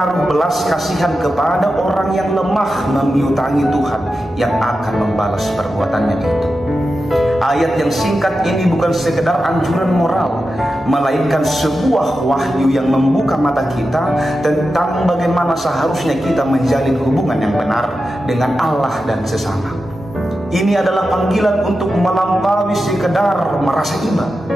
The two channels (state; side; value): normal; both; correlation 0.91